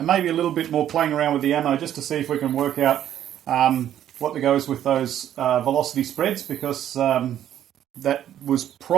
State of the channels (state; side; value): quieter; left; 11.0 dB